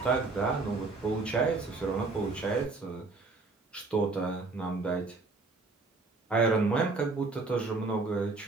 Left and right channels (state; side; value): quieter; left; 3.7 dB